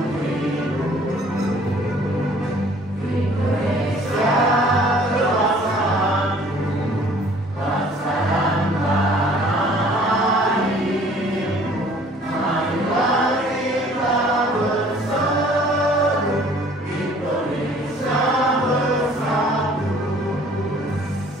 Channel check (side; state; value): both; normal; correlation 0.54